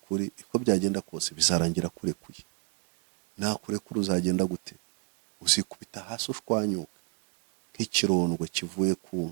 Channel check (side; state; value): left; quieter; 32.0 dB